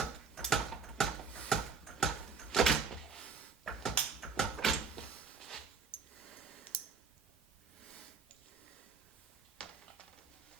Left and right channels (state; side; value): quieter; left; 5.3 dB